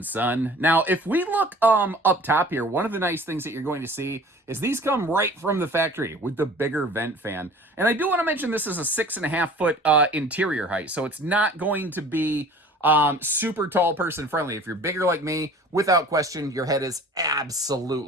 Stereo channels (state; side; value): normal; both; correlation 0.46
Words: son. Now, if we look up top here, one of the nice things that you're going to see is these come right from the factory with the bigger vent fan. And I do want to mention this is a 6.5 foot interior height, so it's not going to be super tall person friendly. If you're bigger like me, without question, your head is